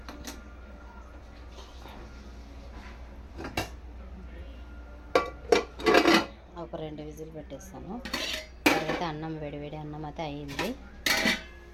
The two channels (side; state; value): both; identical; correlation 1.00